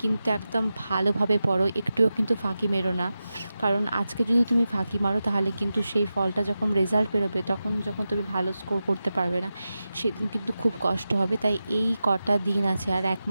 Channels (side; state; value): both; inverted; correlation -0.92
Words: কিন্তু একদম ভালোভাবে পড়ো, একটুও কিন্তু ফাঁকি মেরো না। কারণ আজকে যদি তুমি ফাঁকি মারো তাহলে কিন্তু সেই ফলটা যখন রেজাল্ট বেরোবে, তখন যখন তুমি ভালো স্কোর করতে পারবে না, সেদিন কিন্তু খুব কষ্ট হবে। তাই এই কটা দিন আছে, আর 1